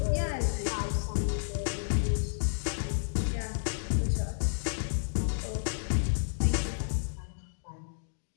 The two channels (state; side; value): silent; right; digital silence